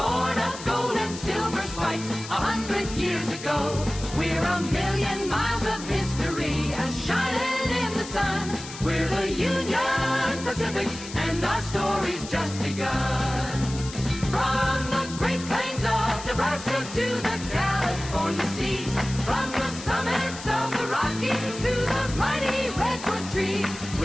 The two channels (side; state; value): left; noise; hiss, 12 dB below the sound